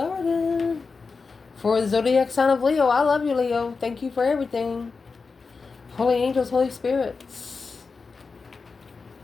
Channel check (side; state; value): right; quieter; 4.6 dB